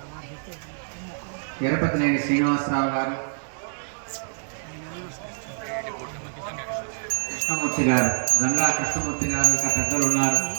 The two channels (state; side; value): silent; left; digital silence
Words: ఎరపతినేని శ్రీనివాసరావు గారు, కృష్ణమూర్తి గారు, గంగా కృష్ణమూర్తి గారు, ఇంకా పెద్దలు ఉన్నారు.